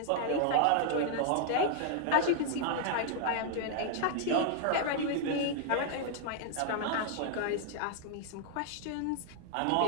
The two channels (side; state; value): both; different; correlation -0.01